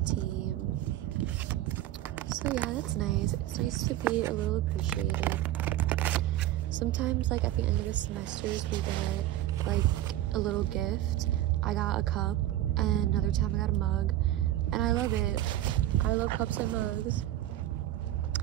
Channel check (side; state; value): left; quieter; 13.8 dB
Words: So yeah, that's nice. It's nice to be a little appreciated. Sometimes, like at the end of the semesters, we get like a little gift. I got a cup, and another time I got a mug, and I love it. I love cups and mugs.